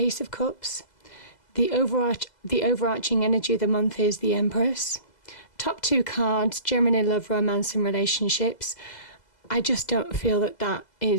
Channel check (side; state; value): right; late; 2.0 ms